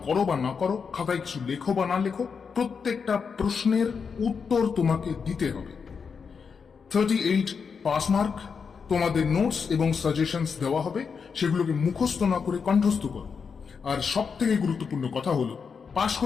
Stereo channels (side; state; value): right; quieter; 5.9 dB